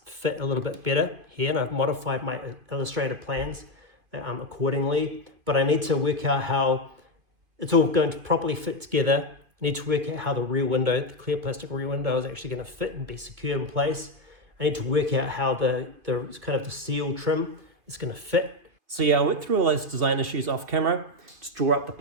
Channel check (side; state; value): left; late; 2.5 ms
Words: fit a little bit better here, and I've modified my illustrator plans accordingly, but I need to work out how it's all going to properly fit together. I need to work out how the rear window, the clear plastic rear window, is actually going to fit and be secure in place. I need to work out how the kind of the seal trim is going to fit. So yeah, I went through all those design issues off camera, just draw up the